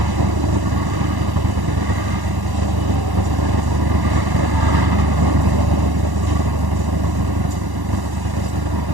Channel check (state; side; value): late; left; 1.1 ms